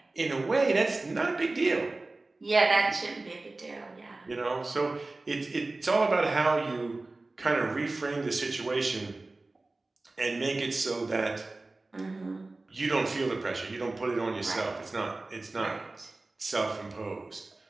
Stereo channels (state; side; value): quieter; left; 3.2 dB